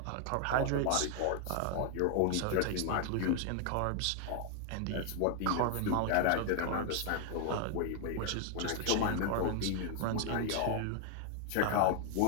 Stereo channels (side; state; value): both; different; correlation 0.00